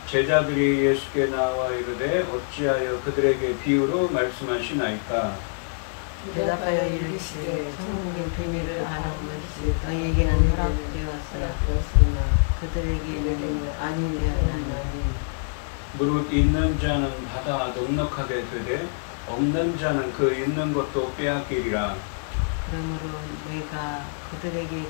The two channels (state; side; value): silent; right; 57 dB below the other